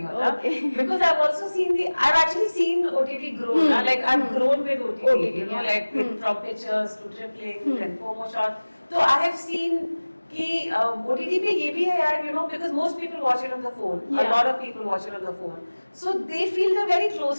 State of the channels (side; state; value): both; inverted; correlation -1.00